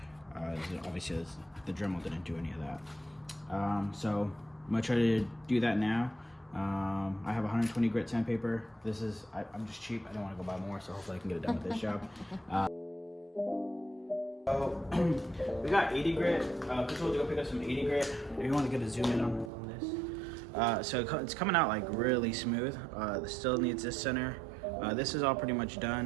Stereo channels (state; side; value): drops out; left; at 19.5 s